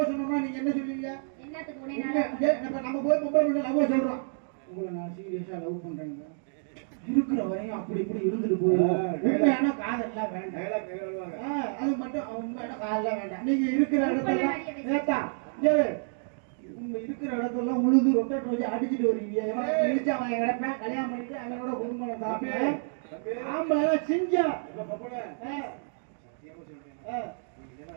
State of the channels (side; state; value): left; silent; digital silence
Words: சொன்னோம்னா நீங்க என்ன சொல்லுவீங்க? என்னத்துக்கு உன்னை நம்ம போய் பொம்பளை பிள்ளை லவ் சொல்றோம், உங்களை நான் சீரியஸா லவ் பண்றேங்க, இருக்கிற வரையும் அப்படி இப்படி இருந்துட்டு போவோம். உண்மையான காதல்லாம் வேண்டாம். அது மட்டும் உண்மையான காதல்லாம் வேண்டாம். நீங்க இருக்கிற இடத்துல ஏத்தா உங்க இருக்கிற இடத்துல உழுது ரொட்டேட் வச்சு அடிச்சுட்டு வருவீங்க. இழிச்சா அவன் கிடப்பேன், கல்யாணம் பண்ணிட்டு அவனோட குடும்பம் சாப்பிடுவேன். ஆம்பளை செஞ்சா